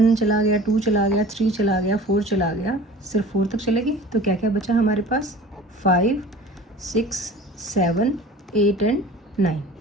चला गया, 2 चला गया, 3 चला गया, 4 चला गया, सिर्फ 4 तक चलेगी, तो क्या क्या बचा हमारे पास? 5 6 7 8 एंड 9।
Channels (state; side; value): normal; both; correlation 0.42